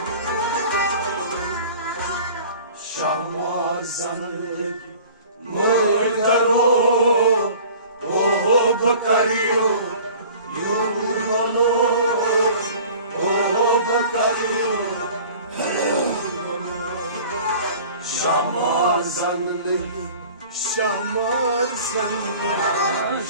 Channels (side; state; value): both; inverted; correlation -0.45